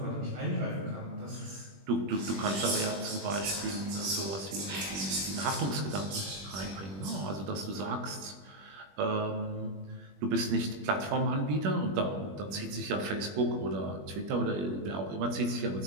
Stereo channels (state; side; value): late; left; 21 ms